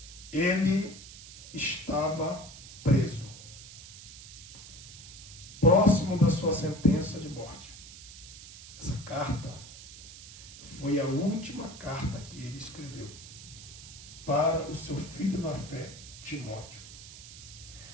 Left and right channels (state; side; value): noise; right; hiss, 15 dB below the sound